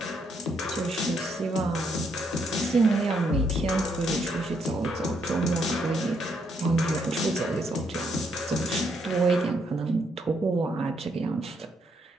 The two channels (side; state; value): both; normal; correlation 0.75